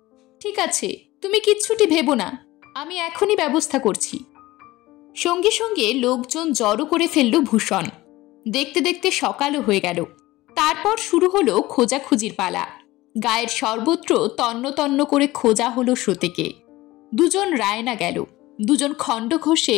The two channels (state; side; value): quieter; right; 18.4 dB